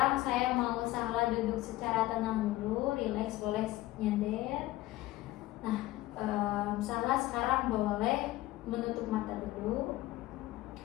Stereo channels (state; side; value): quieter; right; 17.1 dB